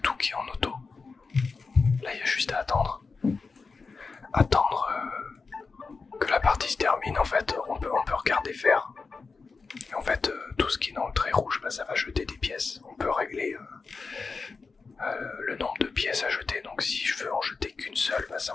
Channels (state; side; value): quieter; right; 4.5 dB